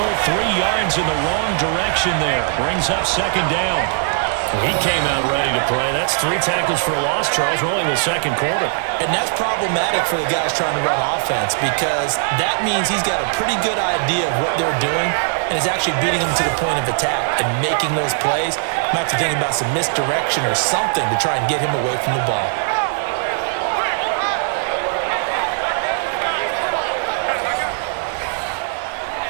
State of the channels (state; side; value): silent; left; digital silence